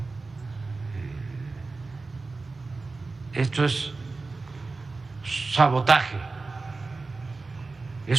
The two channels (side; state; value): left; quieter; 3.8 dB